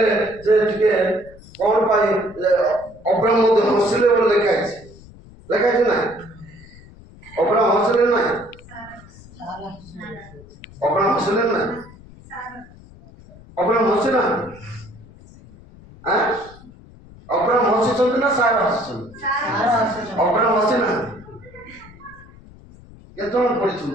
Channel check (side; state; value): left; noise; rumble, 21 dB below the sound